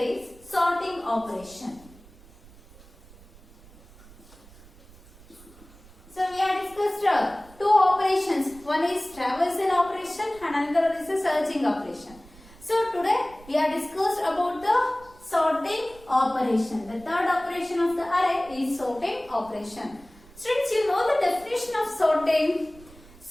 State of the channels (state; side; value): noise; right; rumble, 23 dB below the sound